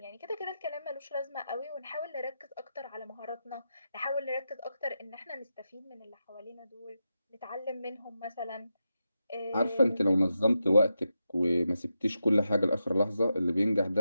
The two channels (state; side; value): inverted; both; correlation -0.88